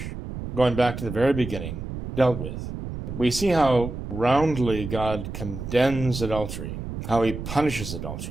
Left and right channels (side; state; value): right; noise; rumble, 7 dB below the sound